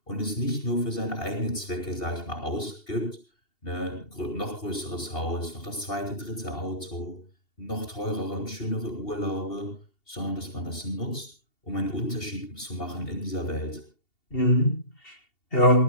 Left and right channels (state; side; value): late; right; 2.7 ms